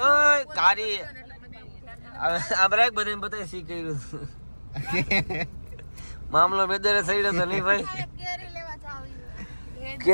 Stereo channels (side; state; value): both; inverted; correlation -1.00